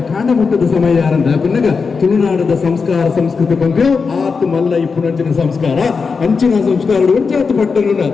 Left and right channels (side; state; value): right; quieter; 5.1 dB